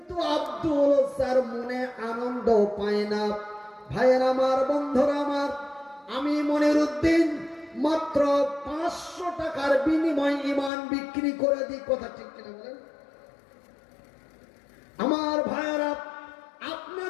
আব্দুল ওসার মনে আনন্দ পায় না। ভাইয়ের আমার, বন্ধুরা আমার, আমি মনিরুদ্দিন মাত্র 500 টাকার বিনিময় ইমান বিক্রি করে দিই। কথা ঠিক কিনা বলেন? আমার ভাইয়েরা,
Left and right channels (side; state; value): right; drops out; at 10.7 s